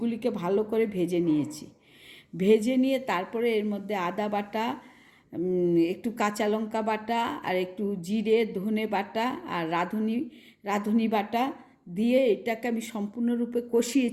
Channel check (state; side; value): identical; both; correlation 1.00